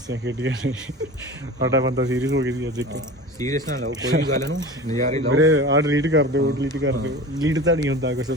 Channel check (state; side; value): normal; both; correlation 0.35